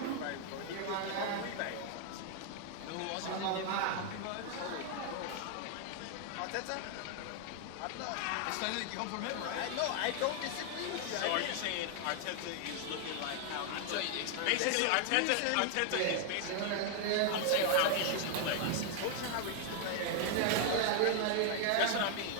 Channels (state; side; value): different; both; correlation 0.00